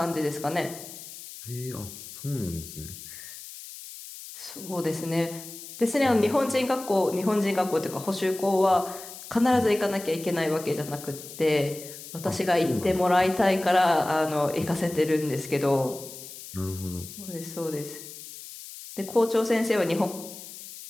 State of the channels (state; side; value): noise; left; hiss, 13 dB below the sound